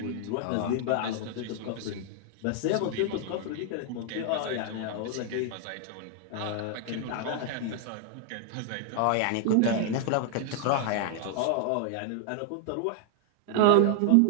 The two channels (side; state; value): both; different; correlation 0.00